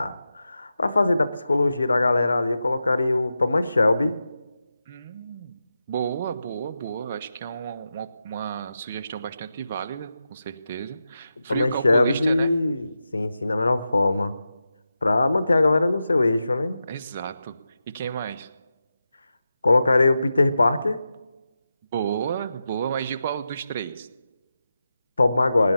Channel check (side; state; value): both; inverted; correlation -0.90